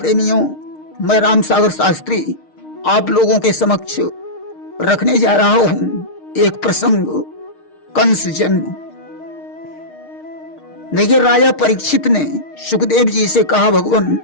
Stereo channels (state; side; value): late; right; 6.5 ms